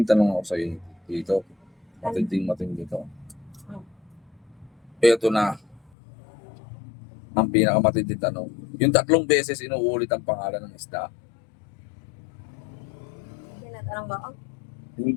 tanong ako sa'yo dito. Matinding to. Ito na ang pinakamatinding tanong. Yung 3 beses inuulit ang pangalan ng isda. Tinatanong ba ako?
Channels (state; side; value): drops out; right; at 5.9 s